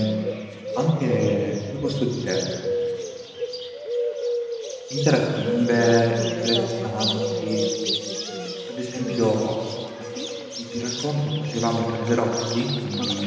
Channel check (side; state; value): both; identical; correlation 1.00